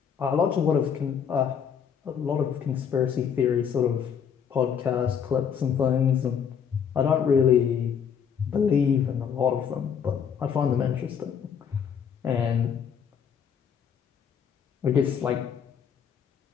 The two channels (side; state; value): right; quieter; 7.6 dB